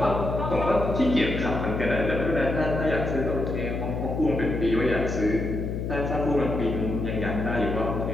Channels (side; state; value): left; noise; hum, 3 dB below the sound